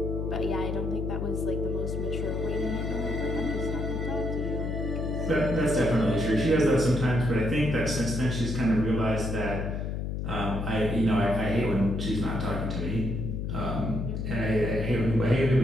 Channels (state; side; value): noise; left; hum, 3 dB below the sound